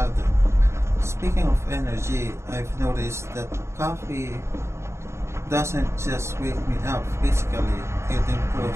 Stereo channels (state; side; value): late; left; 0.13 ms